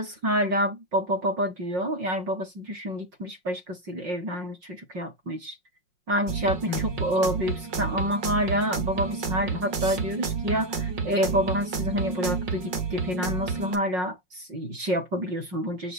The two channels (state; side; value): late; left; 5.5 ms